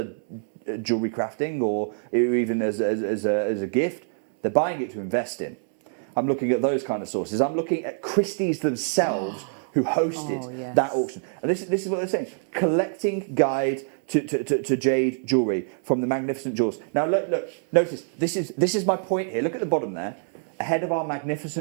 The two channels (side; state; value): left; silent; digital silence